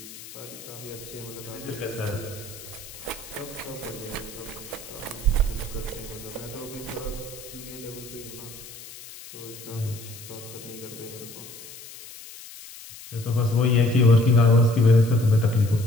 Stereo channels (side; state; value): left; noise; hiss, 15 dB below the sound